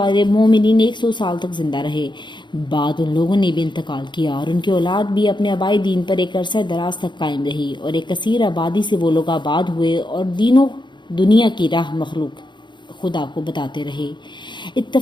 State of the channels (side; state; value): right; late; 0.22 ms